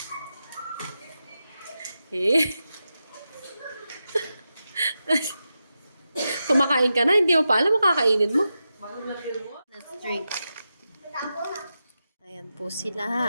Eh. Kumakain ka na, hindi mo pa alam makakainin mo. Let's drink. Ayan po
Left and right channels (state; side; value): inverted; both; correlation -0.89